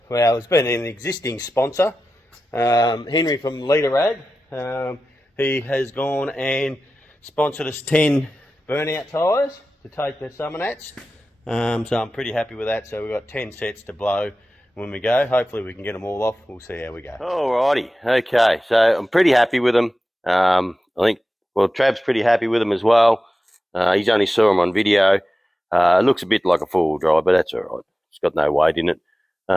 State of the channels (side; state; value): both; normal; correlation 0.94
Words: it's been an existing sponsor, Henry from Leader Rag. He has gone and sponsored us 10 burnout tyres to take the Summernats. So I'm pretty happy with that. So we've got 10 sets to blow when we go. Hopefully we can get them all off. We'll see how we go. Alrighty, okay. So I'm pretty happy with them. I think, well, Trav's pretty happy with them as well. He's only saw them on video. It looks a bit like a four-wheel drive, but that's all right. It's got no weight in it.